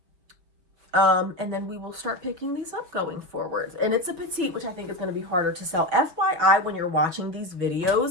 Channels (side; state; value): left; late; 6.3 ms